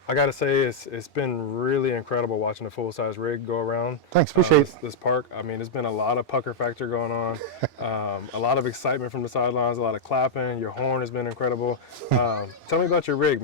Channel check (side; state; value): both; normal; correlation -0.05